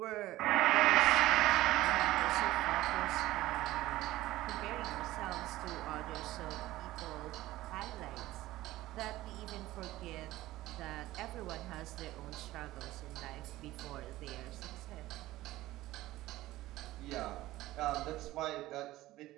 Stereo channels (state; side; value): quieter; left; 16.5 dB